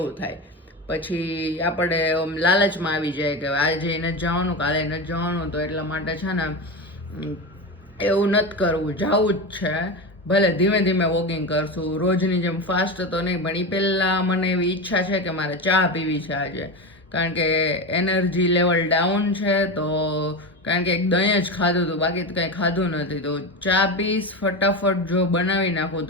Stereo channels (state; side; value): normal; both; correlation 0.20